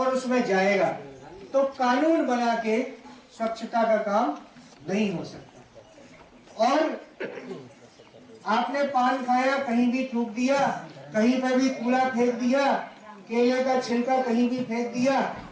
उसमें जाएगा, तो कानून बना के स्वच्छता का काम नहीं हो सकता। और आपने पान खाया, कहीं भी थूक दिया, कहीं पर भी कूड़ा फेंक दिया, केले का छिलका कहीं भी फेंक दिया,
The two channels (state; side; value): identical; both; correlation 1.00